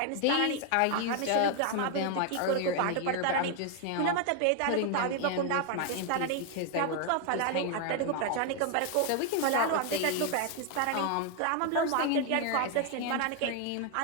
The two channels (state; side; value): different; both; correlation 0.00